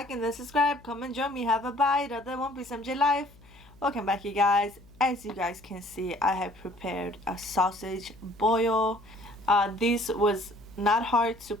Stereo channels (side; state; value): left; noise; hum, 25 dB below the sound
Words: and then subscribe. Come and join me. Have a bite of the One Piece MJ life. Welcome back, you guys. As you guys can see, I have prepared a sausage boil. This was not hard to